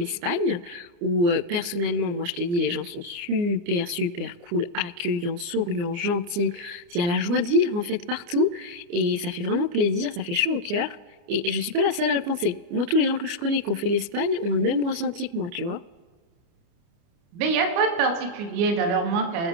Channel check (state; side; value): late; left; 29 ms